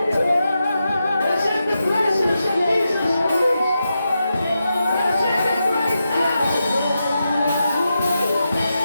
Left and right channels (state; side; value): inverted; both; correlation -0.88